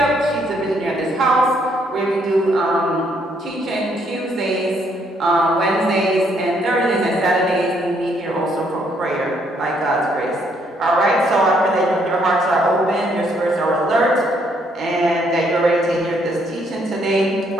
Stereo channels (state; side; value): normal; both; correlation 0.70